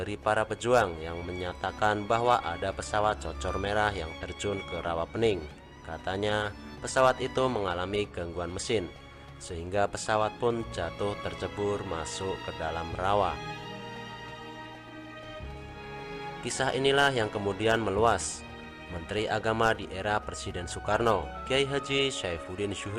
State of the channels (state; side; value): identical; both; correlation 1.00